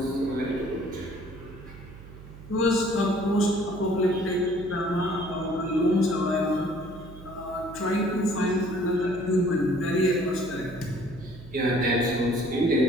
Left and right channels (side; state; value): right; noise; hum, 17 dB below the sound